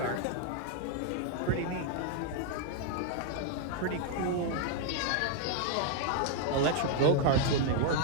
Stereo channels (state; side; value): different; both; correlation 0.00